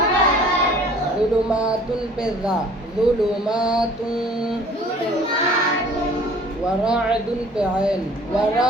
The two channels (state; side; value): normal; both; correlation 0.51